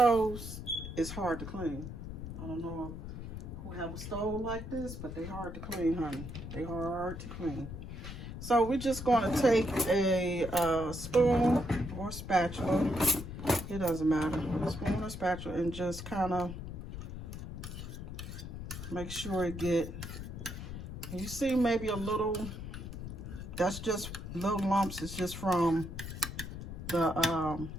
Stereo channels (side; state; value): left; noise; rumble, 8 dB below the sound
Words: is hard to clean. I don't know who have a stove like this, but they hard to clean, honey. They hard to clean. So we're just going to take a spoon or spatula. It doesn't matter. A spoon or spatula, and just kind of make sure it get. You see maybe a little. That's just little lumps. It's just from the